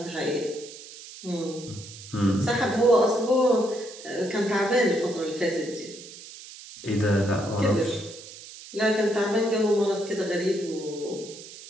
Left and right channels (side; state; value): right; noise; hiss, 16 dB below the sound